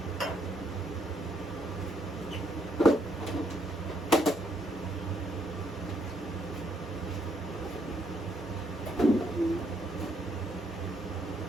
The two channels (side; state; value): both; normal; correlation 0.72